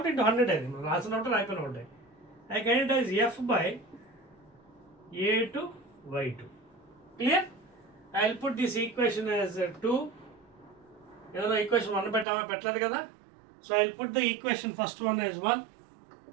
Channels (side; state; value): left; drops out; at 12.2 s